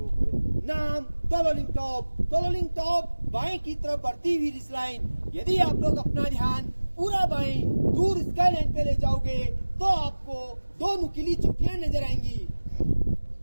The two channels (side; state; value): both; inverted; correlation -1.00